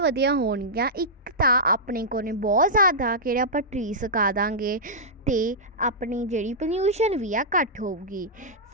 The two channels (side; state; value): both; normal; correlation -0.12